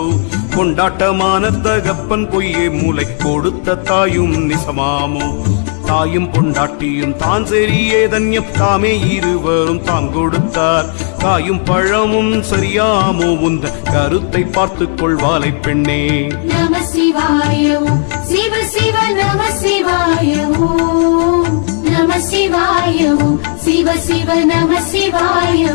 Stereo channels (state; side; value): silent; right; 59 dB below the other